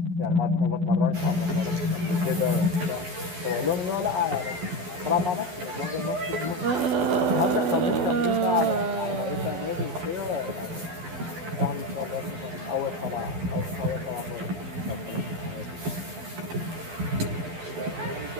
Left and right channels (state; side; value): late; left; 12 ms